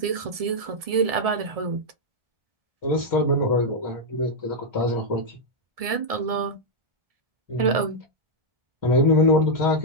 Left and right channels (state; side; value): late; left; 1.7 ms